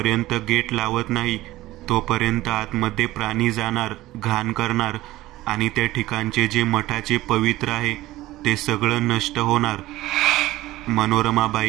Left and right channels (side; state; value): left; quieter; 17.0 dB